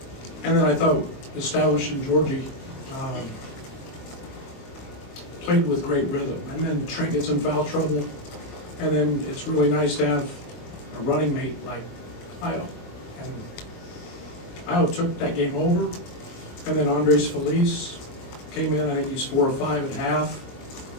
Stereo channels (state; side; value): late; right; 22 ms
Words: And then I thought establishing Georgie played with great rhythm. And then Trent gets in foul trouble. And then it's really nice to have a running mate like Io. And Io took that game over. And then Andres Feliz came in. I think he's 4 or 5 at half.